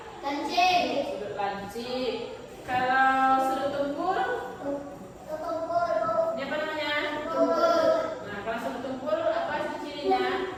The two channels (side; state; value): both; identical; correlation 1.00